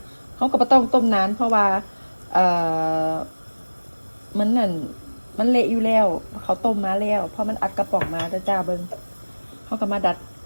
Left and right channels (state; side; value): inverted; both; correlation -1.00